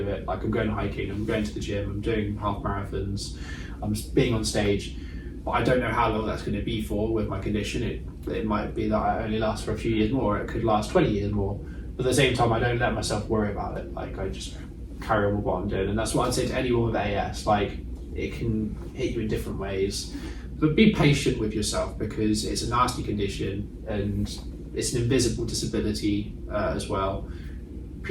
Like, I'm going hiking, I'm going to the gym, I'm doing half marathons, I'm being on stage, but I don't know how long that's going to be for with my condition. It might be that I only last for a few years more, or it could last 20 years more. But at the same time, I don't let myself worry about it. Like, I just carry on with what I'm doing. And that's what I'd say to anyone with AS. Like, it can hit you in different ways. But be patient with yourself, because it's a nasty condition and it's an invisible disability as well.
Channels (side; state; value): both; identical; correlation 1.00